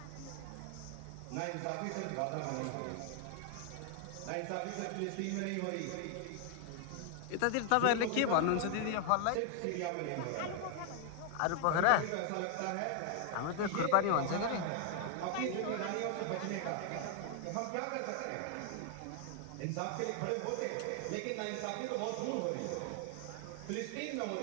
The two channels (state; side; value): different; both; correlation 0.00